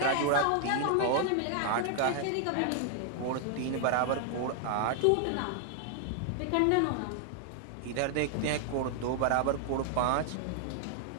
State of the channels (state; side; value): different; both; correlation 0.00